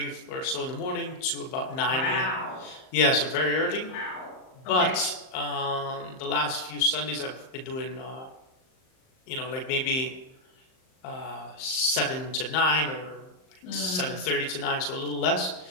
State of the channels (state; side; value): late; right; 38 ms